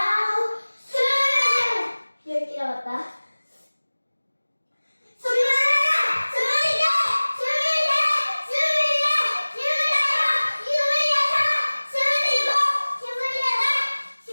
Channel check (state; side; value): inverted; both; correlation -1.00